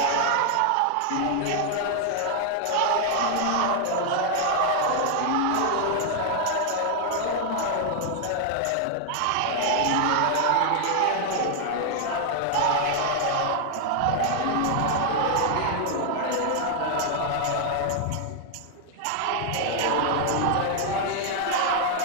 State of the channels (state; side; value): different; both; correlation 0.00